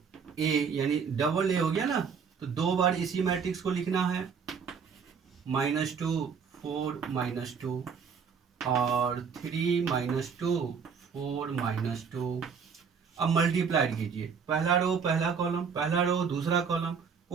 ए यानी डबल ए हो गया ना, तो दो बार इसी मैट्रिक्स को लिखना है, -2 4 -2 और 3 -2 4 -2। अब मल्टीप्लाइड कीजिए, पहला रो पहला कॉलम, पहला रो दूसरा कॉलम,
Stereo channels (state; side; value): quieter; left; 6.3 dB